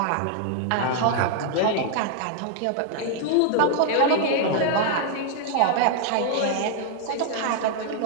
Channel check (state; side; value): different; both; correlation 0.00